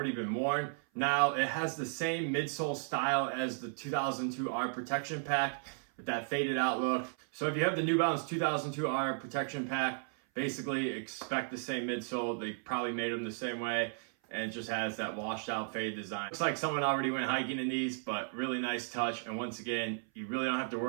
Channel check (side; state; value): left; silent; 55 dB below the other